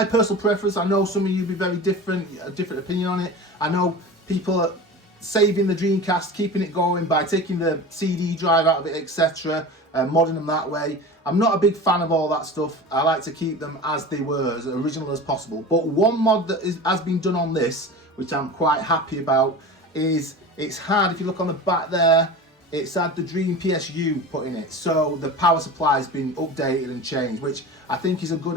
personal preference. I know some of you be very different, a different opinion on it. I know people are saving the Dreamcast, keeping it going by taking the CD drive out of it, etc., modding them that way. I'm not a big fan of all that stuff. I like to keep them as they were, as original as possible. But one mod that has been done on this, which I'm quite happy about, is it's had, if you look on the back there, it's had the Dream PSU put in it. So the power supply has been updated and changed, which I think is a good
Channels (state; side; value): normal; both; correlation 0.33